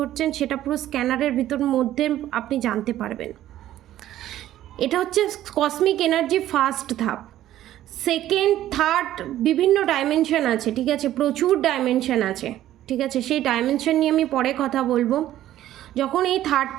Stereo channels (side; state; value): left; quieter; 13.1 dB